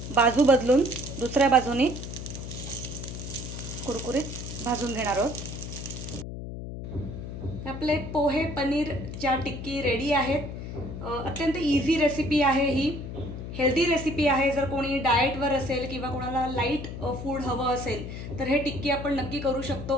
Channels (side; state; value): left; noise; hum, 8 dB below the sound